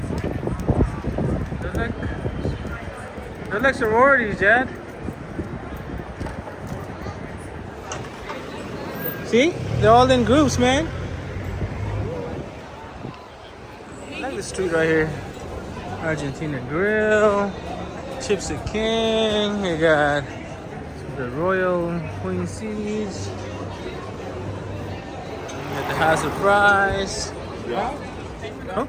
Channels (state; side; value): identical; both; correlation 1.00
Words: They're like sororities, Dad. See? They're all in groups, man. I like the street right here. Argentina Grill, Chips the King. You got the Royal Queen Seeds. You got the House of Fries.